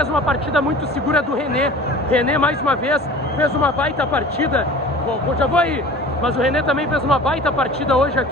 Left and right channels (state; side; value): normal; both; correlation 0.41